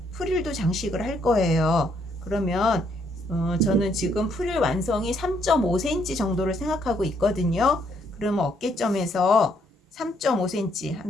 프릴도 장식을 할 거예요. 그러면 저는 지금 프릴 완성이 3.5cm 정도를 생각하고 있거든요. 그러면 어깨점에서 3.5cm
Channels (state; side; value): normal; both; correlation 0.71